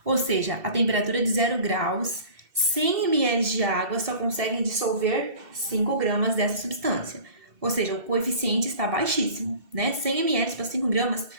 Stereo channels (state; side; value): late; left; 2.7 ms